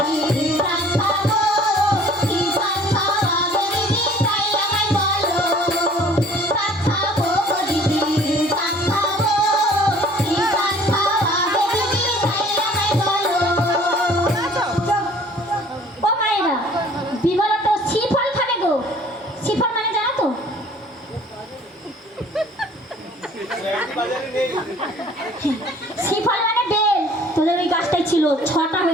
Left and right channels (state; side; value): normal; both; correlation 0.53